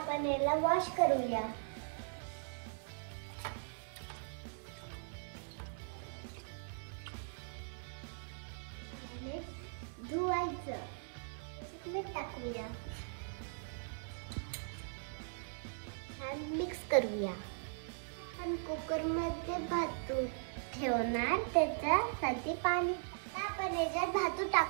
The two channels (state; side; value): silent; left; 52 dB below the other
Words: याला वॉश करूया. धुवायचं. मीठ टाकूया. छान मिक्स करूया. आपण कुकरमध्ये भातू ठेवणार, त्याच्यासाठी पाणी. आता आपण याच्यात भातू